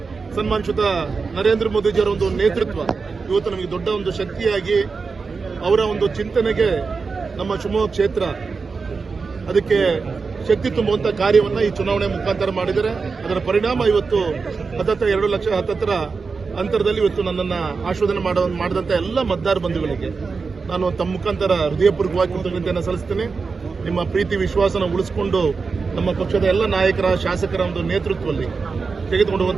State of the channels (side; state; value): left; quieter; 4.7 dB